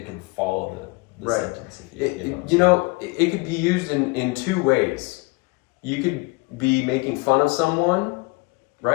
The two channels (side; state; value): right; quieter; 26.8 dB